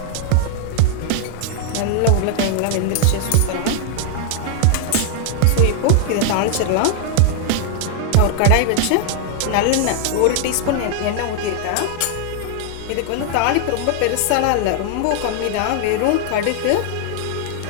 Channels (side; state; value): both; different; correlation 0.00